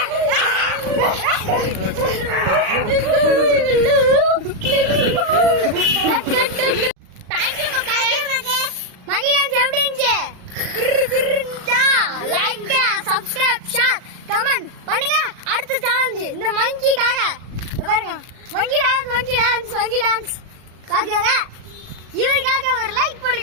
அடுத்த சேலஞ்ச் இந்த மங்கிக்காக பாருங்க. மங்கி டான்ஸ் பாருங்க. இவருக்காக ஒரு லைக்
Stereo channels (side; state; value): left; late; 38 ms